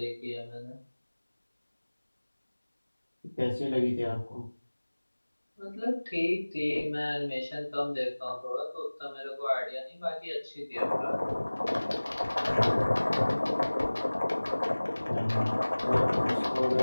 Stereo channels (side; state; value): both; inverted; correlation -1.00